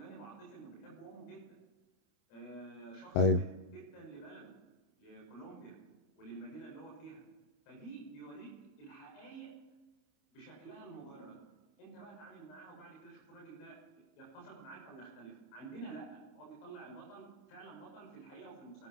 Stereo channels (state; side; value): late; right; 30 ms